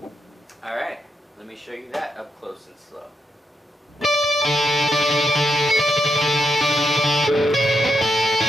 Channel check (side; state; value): both; normal; correlation 0.82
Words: Alright, let me show you that up close and slow.